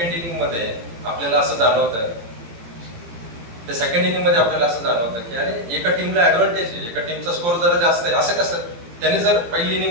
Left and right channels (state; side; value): late; left; 17 ms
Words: इनिंग मध्ये आपल्याला असं जाणवतं, तर सेकंड इनिंग मध्ये आपल्याला असं जाणवतं की अरे एका टीमला ऍडव्हान्टेज आहे, एका टीमचा स्कोर जरा जास्त आहे. असं कसं? त्याने जर पहिली